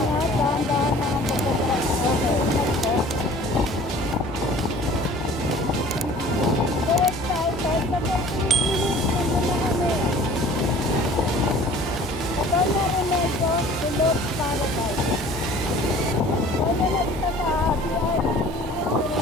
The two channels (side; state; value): both; normal; correlation 0.48